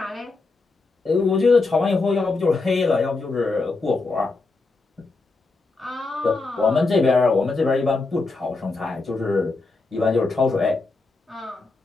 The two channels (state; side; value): quieter; right; 3.7 dB